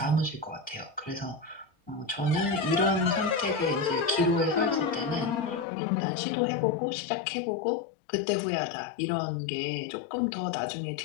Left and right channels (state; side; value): drops out; right; at 5.7 s